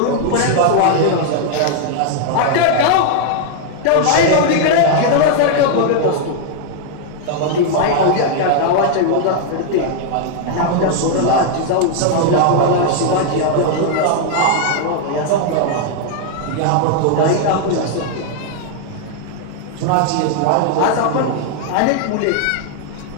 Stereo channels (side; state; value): both; different; correlation 0.00